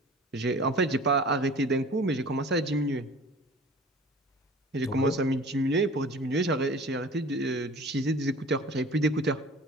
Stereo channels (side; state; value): both; normal; correlation 0.44